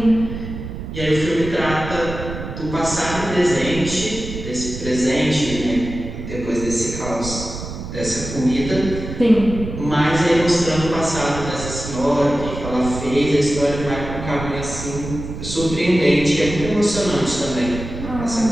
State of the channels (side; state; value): right; noise; rumble, 8 dB below the sound